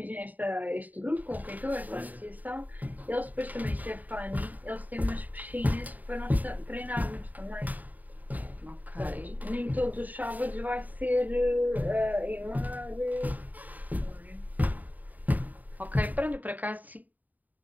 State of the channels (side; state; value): left; late; 0.081 ms